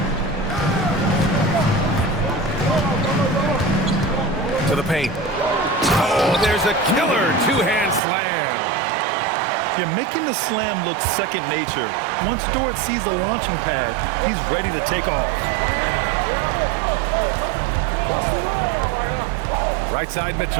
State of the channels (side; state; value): left; drops out; at 8.0 s